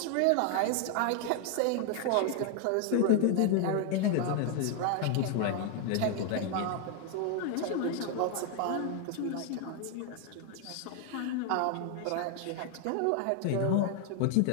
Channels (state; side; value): different; both; correlation 0.00